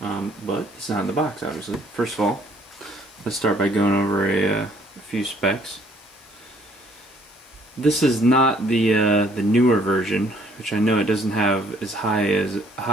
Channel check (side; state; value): both; normal; correlation 0.62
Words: But it's not in the box, obviously. First of all, let's start by going over a few specs. This is not the newer version, which I know it doesn't have as high